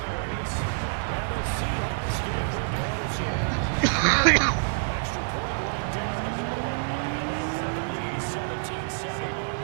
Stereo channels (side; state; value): left; silent; 60 dB below the other